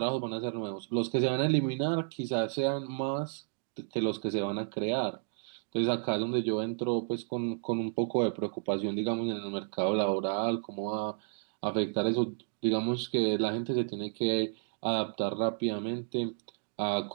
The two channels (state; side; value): silent; left; digital silence